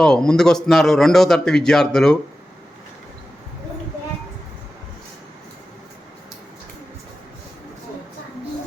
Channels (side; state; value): both; normal; correlation 0.93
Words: ముందుకొస్తున్నారు 2వ తరగతి విద్యార్థులు.